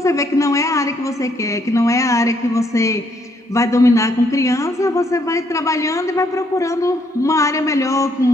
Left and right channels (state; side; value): normal; both; correlation 0.71